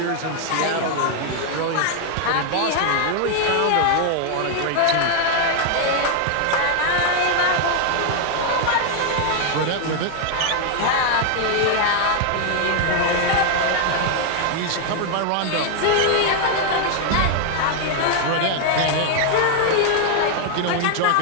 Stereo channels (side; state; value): both; different; correlation 0.00